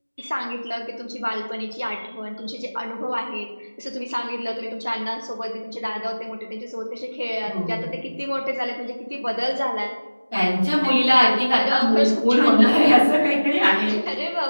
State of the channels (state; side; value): inverted; both; correlation -1.00